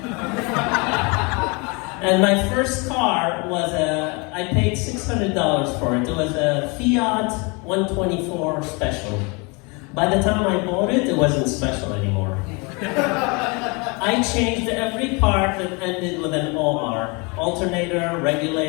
And my first car was I paid $600 for it. It was a Fiat 124 Special. By the time I bought it, it wasn't special anymore. I changed every part that ended with an OR. Alternator,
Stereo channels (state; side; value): quieter; right; 29.9 dB